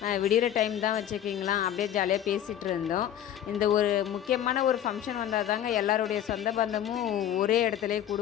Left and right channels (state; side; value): quieter; right; 10.7 dB